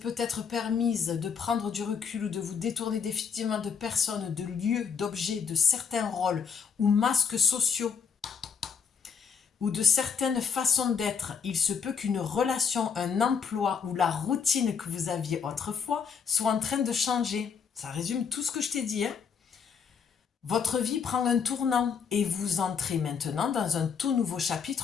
peut-être permise de prendre du recul ou de vous détourner définitivement de personnes, de lieux, d'objets, de certains rôles ou masques sociaux ou de certaines façons d'être. Il se peut qu'une relation, un emploi ou la routine que vous aviez autrefois soit en train de changer. Ça résume tout ce que je t'ai dit, hein. Votre vie prend un tournant et vous entrez maintenant dans un tout nouveau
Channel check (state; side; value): quieter; right; 6.4 dB